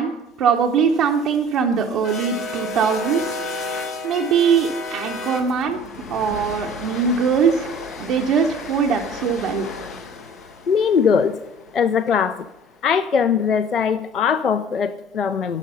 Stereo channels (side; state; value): both; normal; correlation 0.46